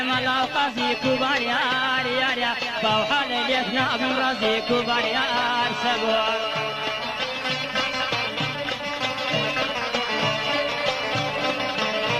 ملا قاسي كبار يا فوحل اليثنا بن رازي كبار يا سبو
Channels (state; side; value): identical; both; correlation 1.00